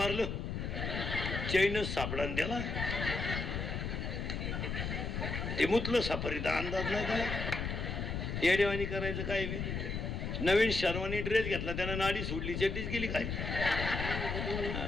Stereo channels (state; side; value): noise; left; rumble, 3 dB below the sound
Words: चैनच सापडा त्याला. ते मुतलं सफारीचा अंदाज नाही त्याला. येडेवानी करायचं काय बी. नवीन शर्वानी ड्रेस घेतला, त्यानं नाडी सोडली, चड्डीच गेली काय.